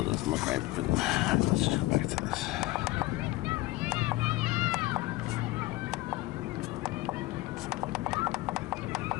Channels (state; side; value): quieter; right; 18.6 dB